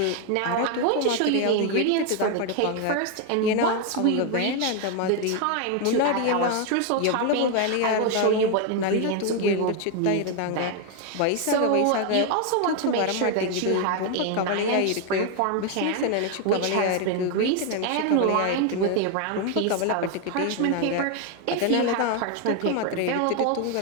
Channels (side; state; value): both; different; correlation 0.01